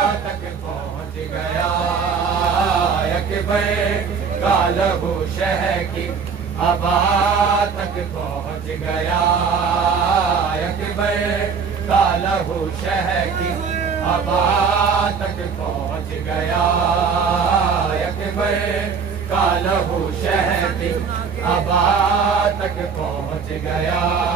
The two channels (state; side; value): quieter; left; 5.9 dB